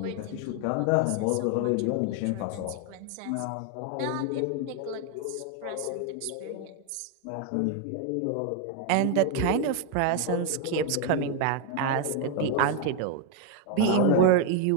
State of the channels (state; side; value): different; both; correlation 0.01